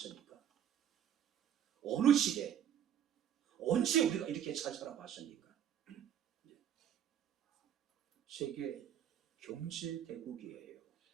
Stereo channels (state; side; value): quieter; left; 9.6 dB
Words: 어느 시대, 언제 우리가 이렇게 잘 살아봤습니까? 세계 경제대국이에요.